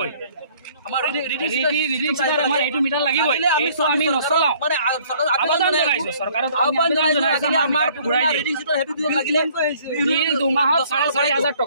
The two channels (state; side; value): inverted; both; correlation -0.58